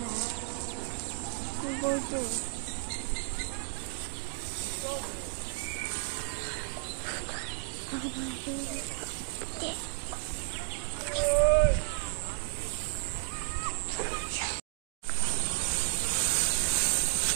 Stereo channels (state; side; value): silent; left; digital silence